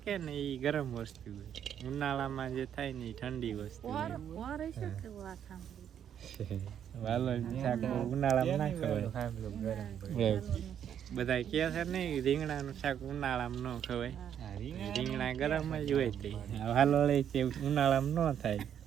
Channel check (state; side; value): quieter; left; 9.2 dB